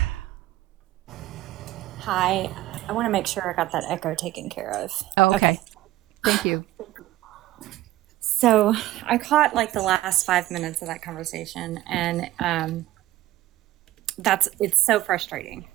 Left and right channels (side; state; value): left; quieter; 15.9 dB